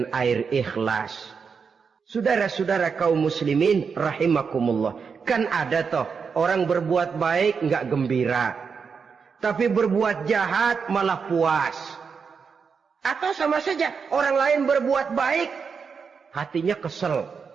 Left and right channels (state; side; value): quieter; left; 5.8 dB